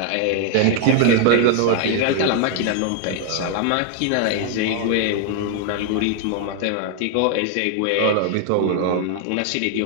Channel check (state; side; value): different; both; correlation 0.00